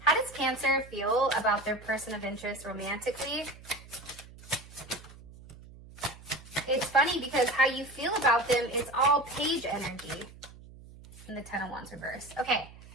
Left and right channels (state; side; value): noise; right; hum, 19 dB below the sound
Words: how does Cancer feel about their person of interest romantically? It's funny because how you feel about them is all page energy in the Ten of Wands reverse. Okay,